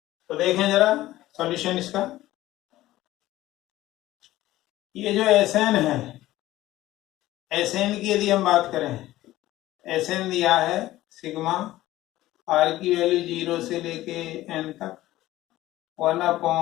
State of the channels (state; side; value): quieter; right; 15.8 dB